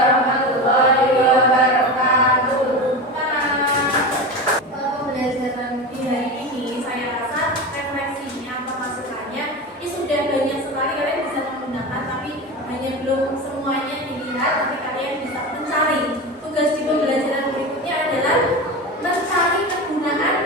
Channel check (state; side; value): normal; both; correlation 0.24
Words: wabarakatuh. Pembelajaran di hari ini saya rasa refleksinya atau masukannya ini sudah banyak sekali kalian bisa menggunakan, tapi hanya belum semuanya dilihat, tapi kalian bisa mencari. Tugas di pembelajaran berikutnya adalah mencari kegunaan